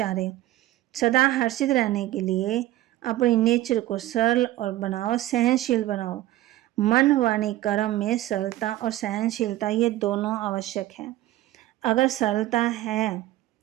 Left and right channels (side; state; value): left; quieter; 15.4 dB